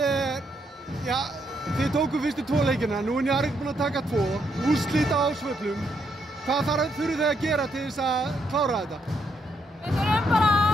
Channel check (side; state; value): both; normal; correlation 0.76